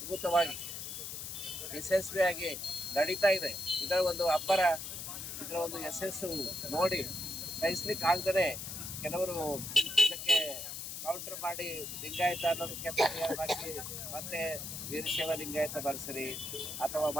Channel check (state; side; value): noise; left; hiss, 7 dB below the sound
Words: ಯಶಸ್ವಿಯಾಗಿ ನಡೀತಾ ಇದೆ. ಇದರ ಒಂದು ಅಬ್ಬರ, ಇದರ ಒಂದು ಯಶಸ್ಸು ನೋಡಿ ಸಹಿಸ್ಲಿಕ್ಕೆ ಆಗದೇ ಕೆಲವರು ಇದಕ್ಕೆ ಕೌಂಟರ್ ಮಾಡಿ ಲಿಂಗಾಯತ ಅನ್ನೋದಕ್ಕೆ ಪರಿಹಾರ ಹಾಕಿ ಮತ್ತೆ ವೀರಶೈವ ಲಿಂಗಾಯತ ಬರ್ಸರಿ ಅಥವಾ